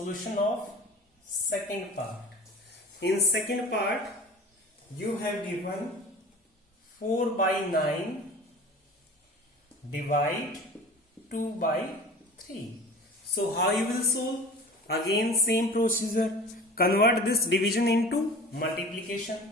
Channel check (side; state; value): both; normal; correlation 0.40